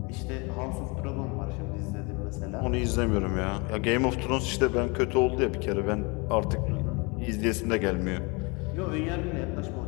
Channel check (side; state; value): right; quieter; 29.2 dB